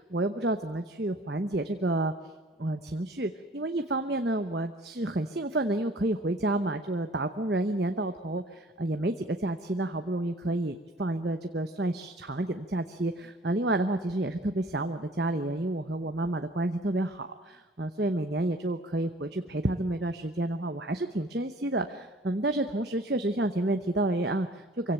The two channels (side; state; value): both; normal; correlation 0.52